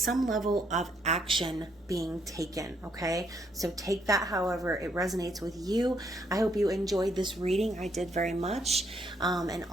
level of action being taken, okay? So take that however it resonates with you. I hope you enjoyed this reading. I did very much. And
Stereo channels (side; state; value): both; normal; correlation 0.72